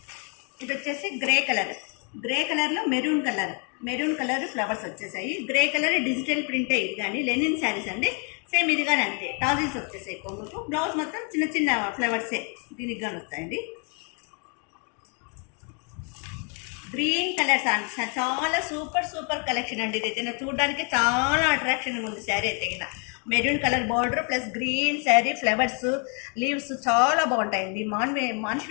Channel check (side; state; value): right; quieter; 37.8 dB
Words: ఇది వచ్చేసి గ్రే కలర్లో మెరూన్ కలర్ ఫ్లవర్స్ వచ్చేసాయి. గ్రే కలర్ డిజిటల్ ప్రింటే. ఇది కానీ లెనిన్ శారీస్ అండి. సేమ్ ఇది కానీ అంతే, టాజిల్స్ వచ్చేసాయి కొంగుకు. బ్లౌజ్ మొత్తం చిన్న ఫ్లవర్సే దీనికి కానీ వస్తాయండి. గ్రీన్ కలర్స్ చాలా సూపర్ కలెక్షన్ అండి. ఇది చూడడానికి చాలా అట్రాక్షన్గా ఉంది శారీ అయితే. Maroon colour border plus green sari, flowers, leaves చాలా బాగుంటాయండి.